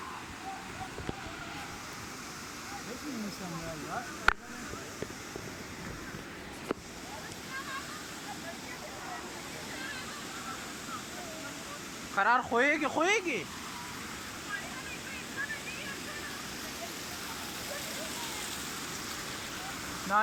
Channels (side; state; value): both; identical; correlation 1.00